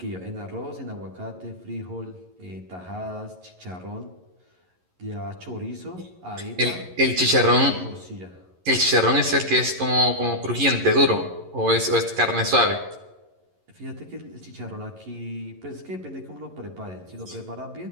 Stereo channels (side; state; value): left; late; 11 ms